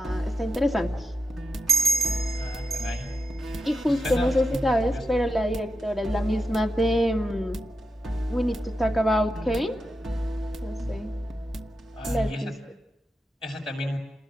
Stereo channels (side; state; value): both; normal; correlation 0.87